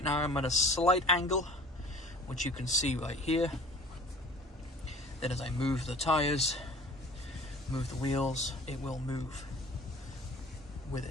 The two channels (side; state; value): both; normal; correlation 0.46